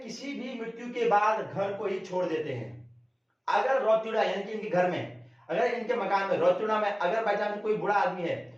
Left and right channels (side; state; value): both; identical; correlation 1.00